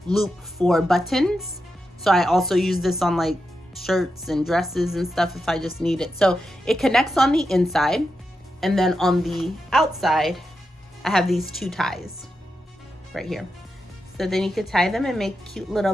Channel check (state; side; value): normal; both; correlation 0.87